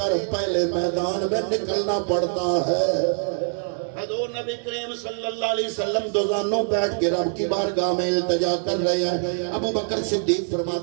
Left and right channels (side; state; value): left; silent; digital silence